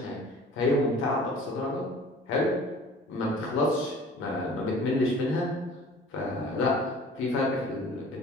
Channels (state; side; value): normal; both; correlation 0.47